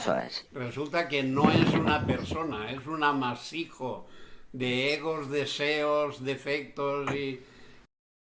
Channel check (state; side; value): identical; both; correlation 1.00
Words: es. resulta que no es una persona, es un amasijo de egos, deseos, defectos y